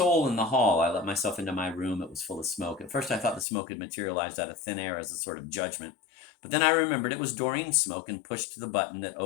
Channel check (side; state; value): right; drops out; at 3.5 s